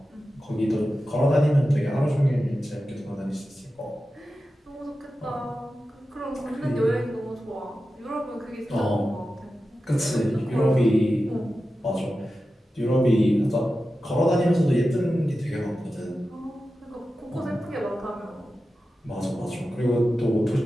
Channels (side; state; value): both; normal; correlation 0.93